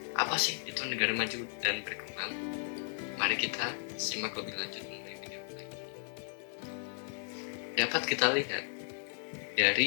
Apa sih itu negara maju dan berkembang? Mari kita simak lebih lanjut mengenai video ini. Dapat kita lihat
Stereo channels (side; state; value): right; silent; digital silence